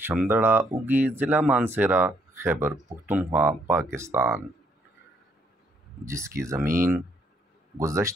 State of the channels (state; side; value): normal; both; correlation 0.70